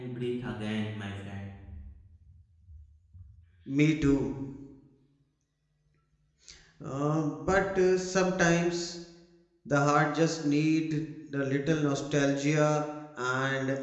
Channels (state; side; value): identical; both; correlation 1.00